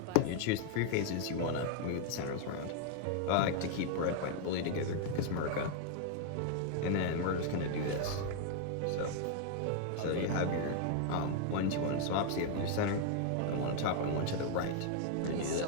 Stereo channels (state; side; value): different; both; correlation 0.00